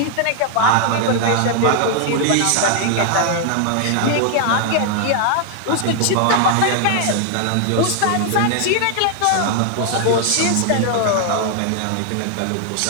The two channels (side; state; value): both; different; correlation 0.00